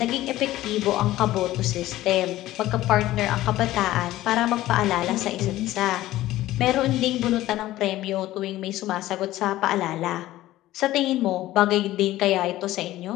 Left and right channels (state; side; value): quieter; right; 15.5 dB